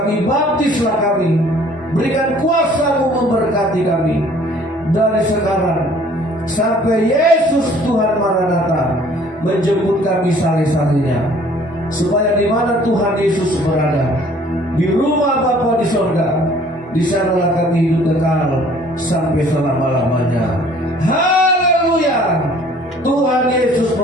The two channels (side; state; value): both; normal; correlation 0.55